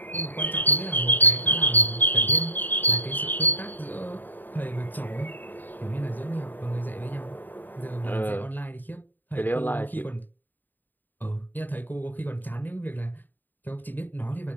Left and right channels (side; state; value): right; late; 0.089 ms